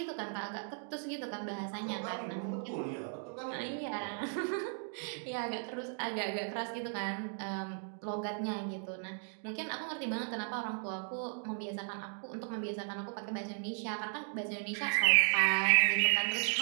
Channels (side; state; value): left; silent; 54 dB below the other